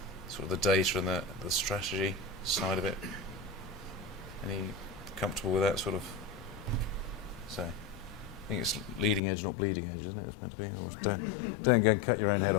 Sort of the data and the strategy side of it. Any comfortable with that sort of? So, I think it's leading edge, not bleeding edge, isn't it? It's meant to be. Or don't go and cut your own head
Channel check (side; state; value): right; drops out; at 9.2 s